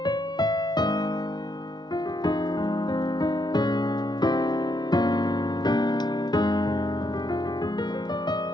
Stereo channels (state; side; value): late; right; 0.20 ms